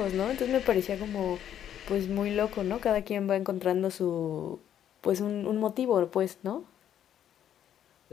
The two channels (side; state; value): right; quieter; 10.1 dB